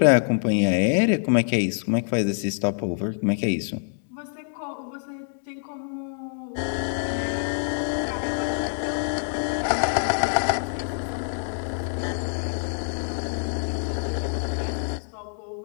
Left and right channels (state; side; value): silent; right; digital silence